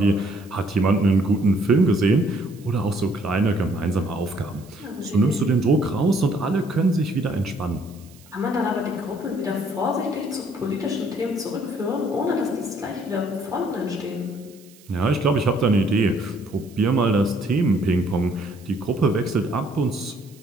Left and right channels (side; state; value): right; noise; hiss, 26 dB below the sound